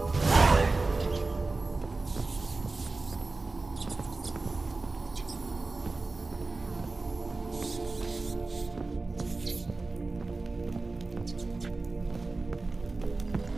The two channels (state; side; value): quieter; left; 3.5 dB